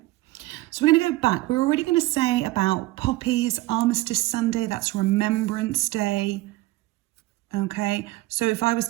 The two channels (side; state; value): left; quieter; 18.9 dB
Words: So we're going to go back. We're already going to say about Poppies, Armistice Sunday, that's Remembrance Day. Okay, so if I was